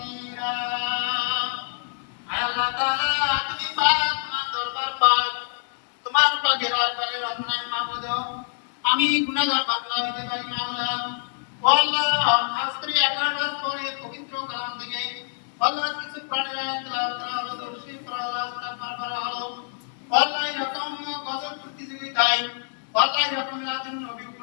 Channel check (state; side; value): silent; right; digital silence